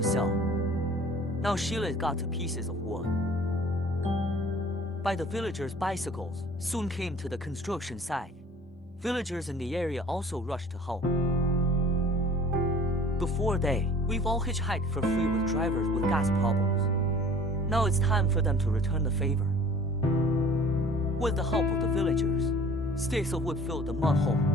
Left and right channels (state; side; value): normal; both; correlation 0.48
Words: sell. Now Sheila's got to pieces of wood. By the villagers' bicycles soon came to the construction site. Villagers in the area also rushed to help. Before we've all hitchhiked for free with drivers with gas problems. Now it's time for them to return the favor. With the help of the villagers, sticks of wood filled the mud hole.